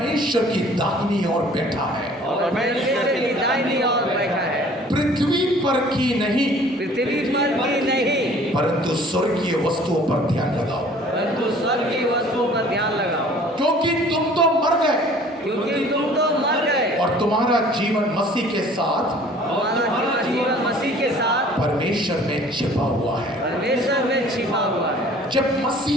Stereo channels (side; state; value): both; normal; correlation 0.51